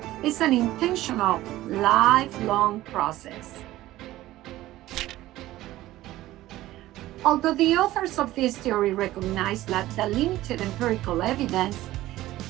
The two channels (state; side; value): quieter; left; 15.9 dB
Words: is an intentional, lifelong process. Although the authors of this theory recognize that the limited empirical evidence,